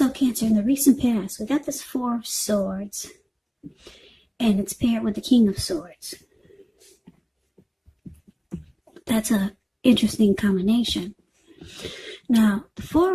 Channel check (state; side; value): identical; both; correlation 1.00